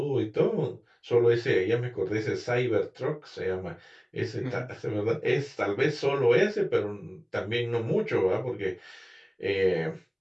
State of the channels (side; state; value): both; identical; correlation 1.00